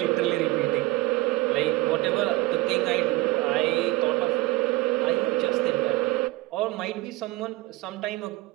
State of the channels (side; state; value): left; quieter; 19.6 dB